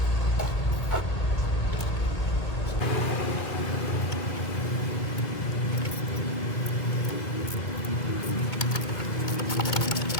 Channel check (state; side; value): late; right; 2.2 ms